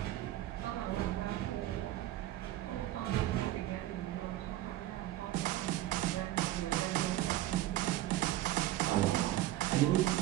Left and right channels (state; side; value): quieter; left; 14.8 dB